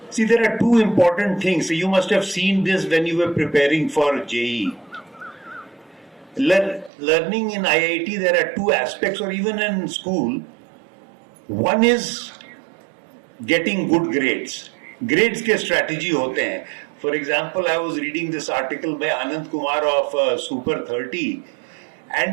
See, there are two important things. You must have seen this when you were preparing for JEE. Learning in IIT, there are two aspects, or even in school. One is getting good grades. Grades के strategy होते हैं. For example, I was reading this article by Anand Kumar of Super 30.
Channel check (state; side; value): drops out; left; at 6.9 s